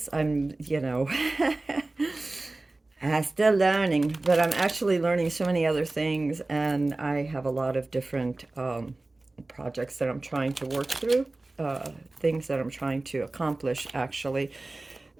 I'm, still learning, but I'm actually learning so many other things, and I have a lot of different projects that I'm trying to work through, things that I'm trying to accomplish, actually.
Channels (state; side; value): quieter; left; 3.0 dB